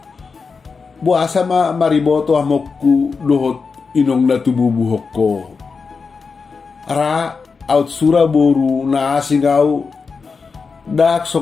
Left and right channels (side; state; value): right; quieter; 5.0 dB